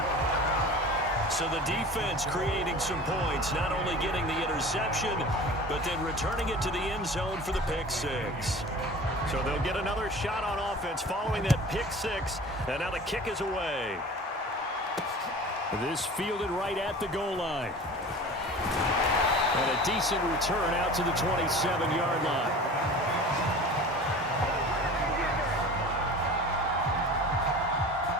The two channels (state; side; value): normal; both; correlation 0.39